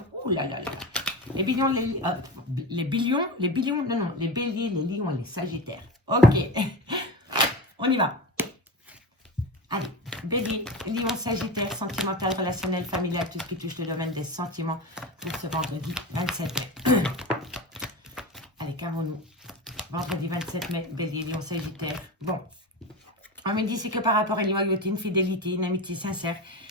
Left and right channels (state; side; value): normal; both; correlation 0.25